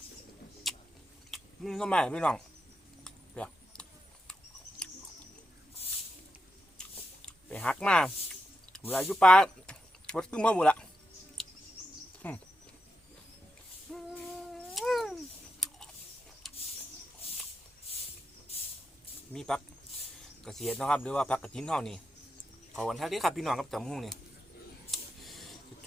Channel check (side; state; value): both; normal; correlation 0.86